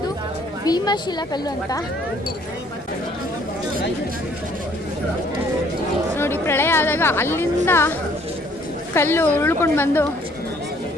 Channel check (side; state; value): both; normal; correlation 0.61